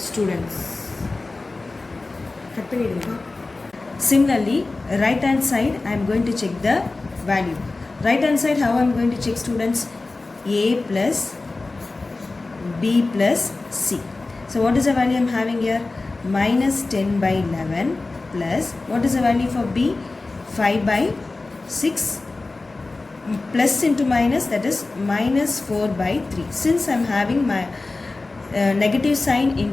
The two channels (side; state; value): right; quieter; 3.4 dB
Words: Similarly, right hand side I am going to check the value. Right hand side, how I am going to check, students? A plus B plus C. So what is the value I am having here? Minus 10 by 11 plus, what is the value for B? 5 by 6 plus into minus, that is minus 4 by 3. Since I am having my negative sign